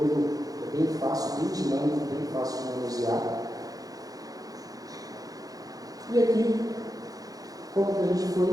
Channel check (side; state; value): left; late; 0.18 ms